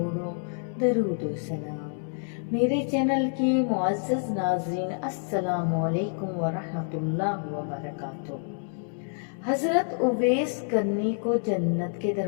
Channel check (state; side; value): silent; right; digital silence